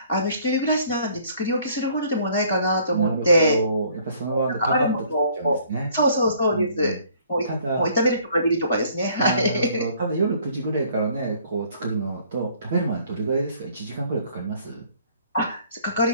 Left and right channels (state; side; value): inverted; both; correlation -0.59